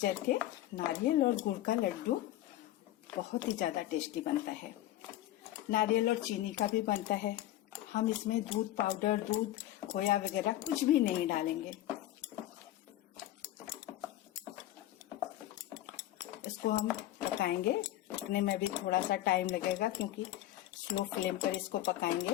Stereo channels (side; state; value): right; quieter; 14.2 dB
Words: के नारियल और गुड़ का लड्डू बहुत ही ज्यादा टेस्टी बनता है। नारियल और चीनी का भी बनता है। हम इसमें दूध पाउडर, दूध खोया वगैरह कुछ भी नहीं डालेंगे। इसको हम पकाएंगे। पकने में भी थोड़ा सा टाइम लगेगा क्योंकि स्लो फ्लेम पर इसको